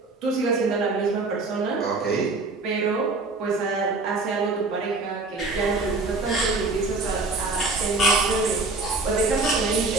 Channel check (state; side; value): quieter; left; 3.5 dB